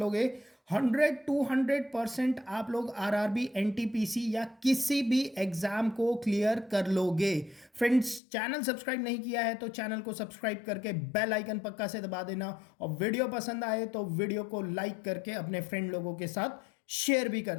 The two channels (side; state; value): right; drops out; at 8.2 s